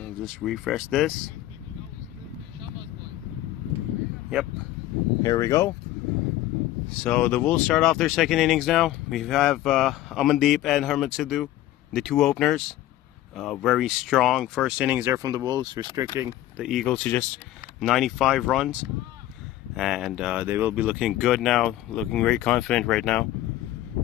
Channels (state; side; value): quieter; right; 14.4 dB